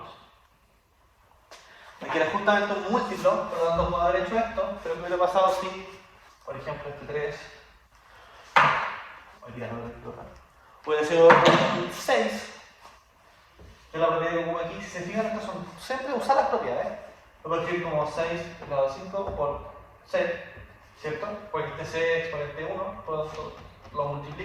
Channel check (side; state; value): both; identical; correlation 1.00